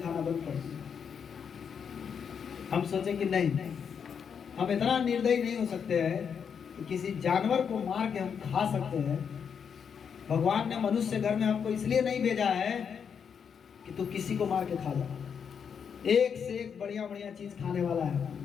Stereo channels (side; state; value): right; quieter; 7.0 dB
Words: बंद कर दिए। हम सोचे कि नहीं, हम इतना निर्दयी नहीं हो सकते हैं कि किसी जानवर को मार के हम खा सकते हैं। भगवान ने मनुष्य घर में हमको इसलिए नहीं भेजा है कि तू किसी को मार के खा जा। एक से एक बढ़िया बढ़िया चीज खाने वाला है।